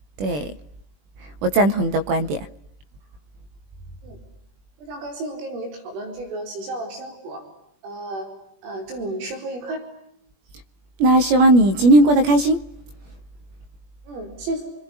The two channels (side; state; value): left; late; 21 ms